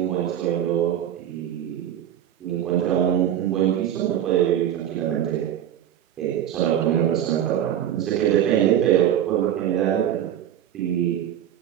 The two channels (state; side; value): quieter; left; 10.6 dB